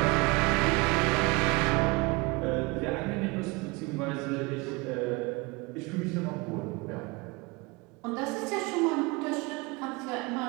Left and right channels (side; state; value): left; quieter; 25.9 dB